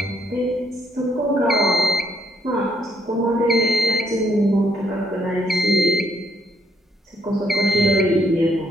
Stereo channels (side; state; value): both; normal; correlation 0.73